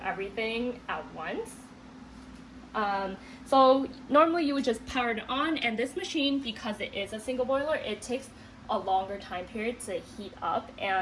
at once. So normally you would just power it on, and this machine, because it is a single boiler, it takes a longer time period to heat up,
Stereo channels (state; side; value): identical; both; correlation 1.00